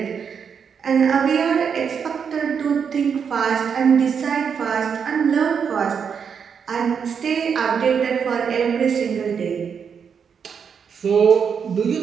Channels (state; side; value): quieter; left; 6.8 dB